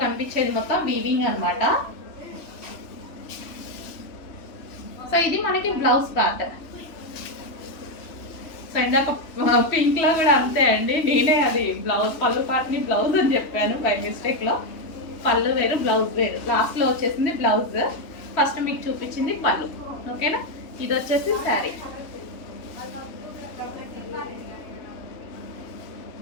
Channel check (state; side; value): late; right; 2.9 ms